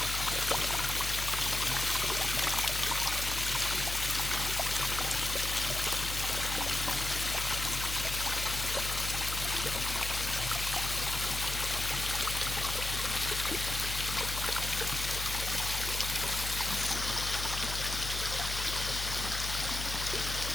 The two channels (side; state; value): left; noise; hum, 5 dB below the sound